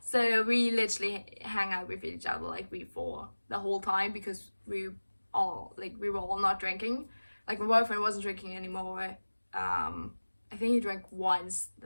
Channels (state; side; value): inverted; both; correlation -1.00